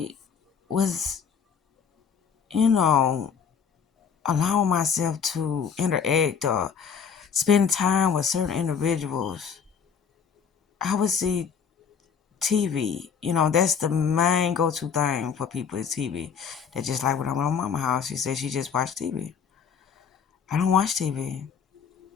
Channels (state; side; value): quieter; right; 6.7 dB